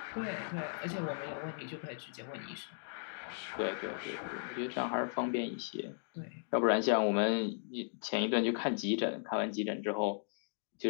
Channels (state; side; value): silent; right; digital silence